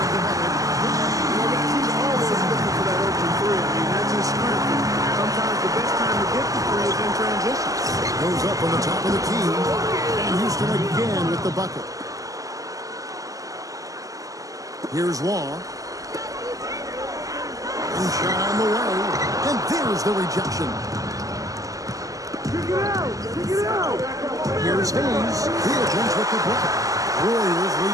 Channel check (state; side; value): late; left; 0.17 ms